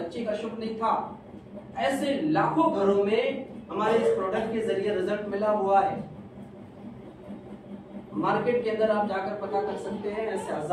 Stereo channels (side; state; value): both; identical; correlation 1.00